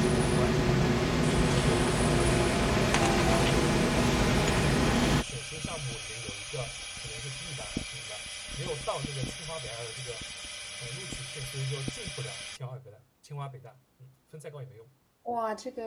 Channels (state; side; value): identical; both; correlation 1.00